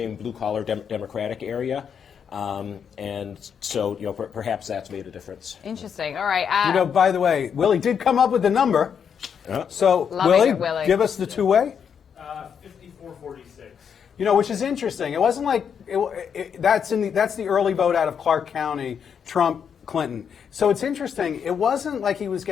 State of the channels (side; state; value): right; quieter; 7.4 dB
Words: blue-collar Democratic area. And so, perhaps that's made a difference. Interesting. All right. By the way, Willie did come up with the number. So, Willie, give us the two-way. 54-46. Which is interesting. It wasn't like that's the early vote out of Clark County, Trump, Clinton. So it's interesting. It wasn't like he was